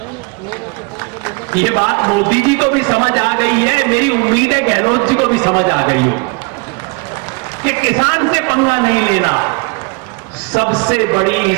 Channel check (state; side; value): quieter; left; 30.7 dB